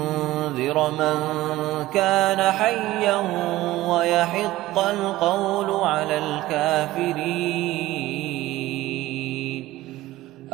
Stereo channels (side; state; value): left; quieter; 16.8 dB